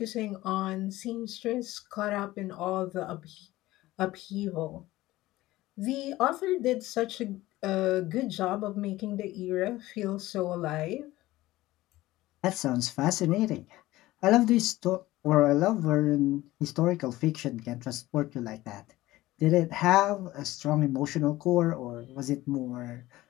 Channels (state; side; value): quieter; right; 17.3 dB